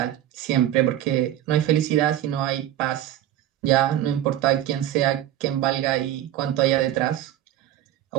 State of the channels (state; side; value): quieter; left; 12.3 dB